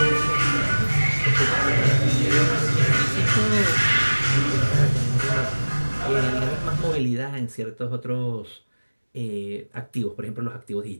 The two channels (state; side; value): inverted; both; correlation -1.00